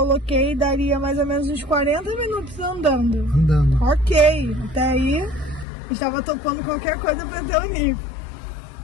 daria mais ou menos uns 40 minutos andando. Ok, até aí estava topando qualquer coisa para ter o NIF.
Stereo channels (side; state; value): right; drops out; at 5.7 s